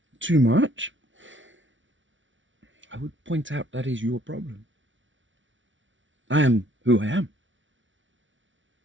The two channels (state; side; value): late; left; 0.56 ms